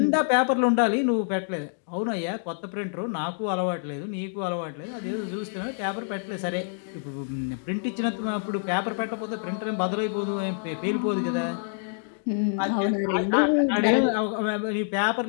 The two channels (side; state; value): right; silent; digital silence